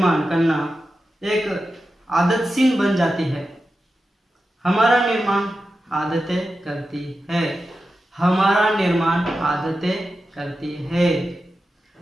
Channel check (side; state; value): both; normal; correlation 0.91